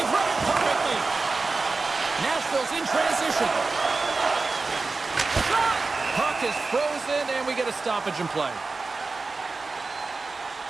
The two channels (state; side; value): quieter; left; 3.9 dB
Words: running perfectly. Nashville's in transition. Shot! Puck is frozen, and we get a stoppage in play.